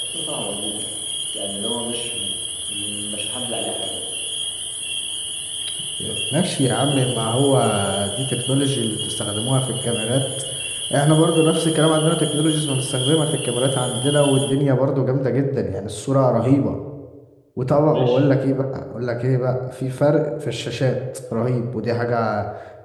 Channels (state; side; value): identical; both; correlation 1.00